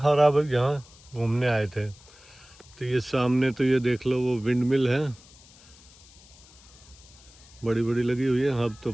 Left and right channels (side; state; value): left; noise; hiss, 24 dB below the sound